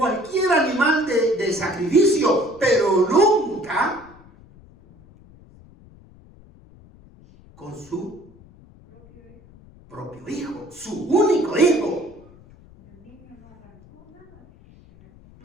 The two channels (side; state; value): left; noise; rumble, 25 dB below the sound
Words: animal de sacrificio, pero nunca con su propio hijo, su único hijo.